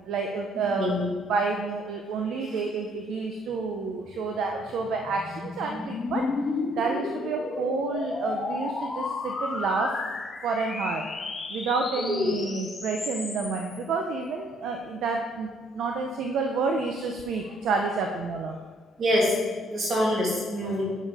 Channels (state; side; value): normal; both; correlation 0.65